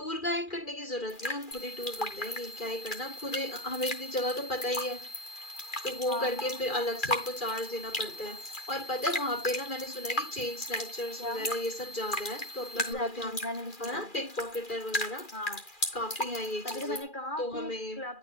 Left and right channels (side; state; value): right; late; 2.4 ms